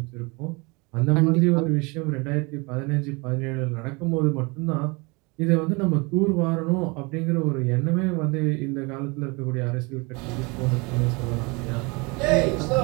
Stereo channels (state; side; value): quieter; left; 27.9 dB